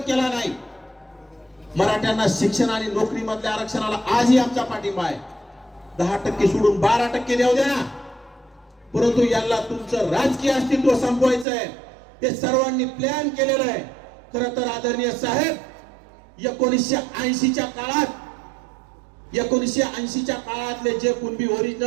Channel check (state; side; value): drops out; left; at 11.5 s